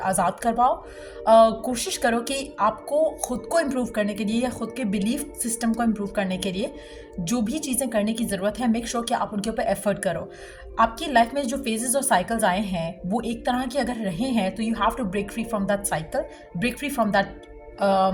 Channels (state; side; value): identical; both; correlation 1.00